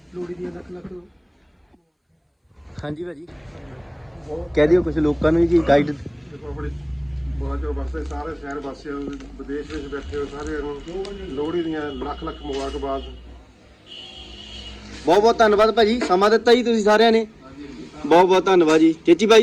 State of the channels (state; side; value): identical; both; correlation 1.00